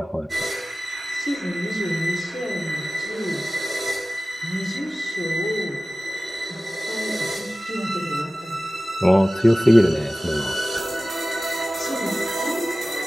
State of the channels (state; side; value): normal; both; correlation 0.96